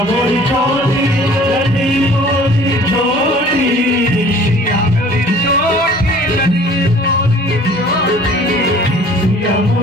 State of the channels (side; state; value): both; normal; correlation 0.50